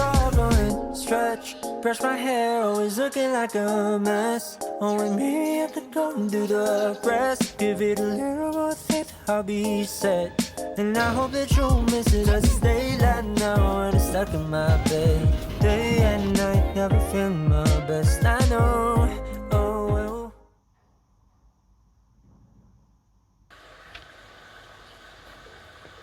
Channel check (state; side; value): identical; both; correlation 1.00